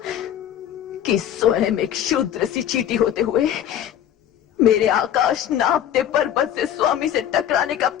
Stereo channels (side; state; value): right; quieter; 10.5 dB